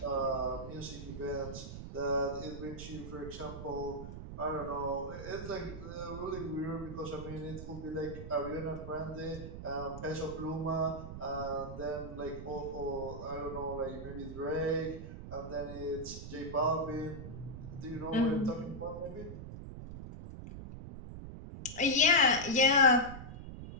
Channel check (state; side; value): noise; right; rumble, 9 dB below the sound